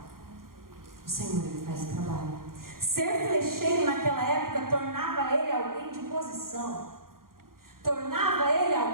O Senhor, Ele faz o trabalho. Ser flecheiro naquela época tornava ele alguém de posição. Tornava ele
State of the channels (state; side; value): late; left; 0.92 ms